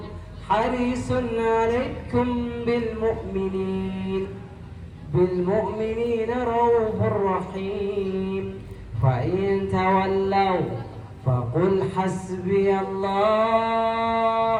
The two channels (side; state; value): both; identical; correlation 1.00